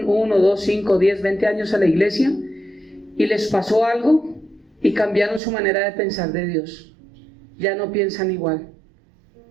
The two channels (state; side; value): drops out; left; at 5.4 s